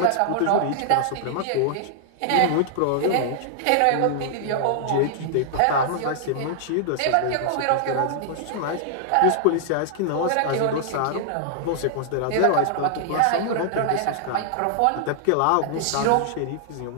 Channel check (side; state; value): both; different; correlation -0.01